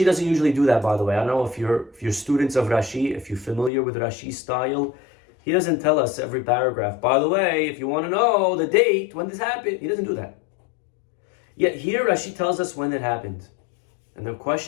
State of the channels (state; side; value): drops out; right; at 3.7 s